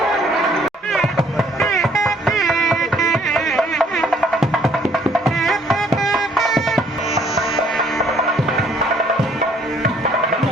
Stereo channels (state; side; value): normal; both; correlation 0.62